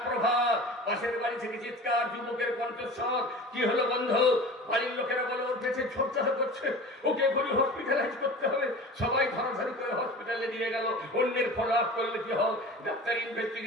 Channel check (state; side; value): normal; both; correlation 0.37